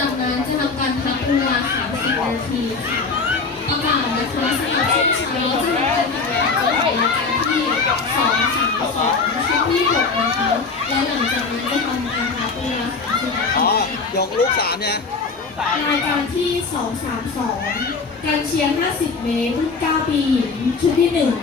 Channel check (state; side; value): quieter; right; 4.5 dB